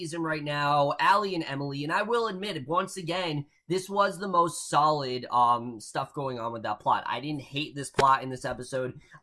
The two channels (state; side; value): identical; both; correlation 1.00